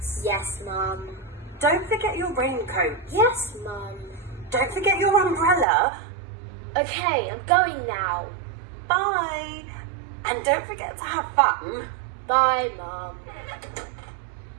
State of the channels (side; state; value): left; drops out; at 5.7 s